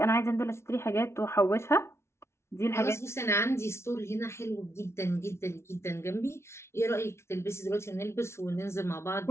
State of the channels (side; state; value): right; late; 0.13 ms